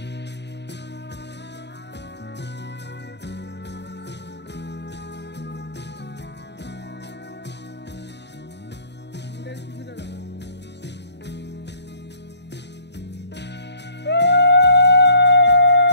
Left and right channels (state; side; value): late; right; 0.50 ms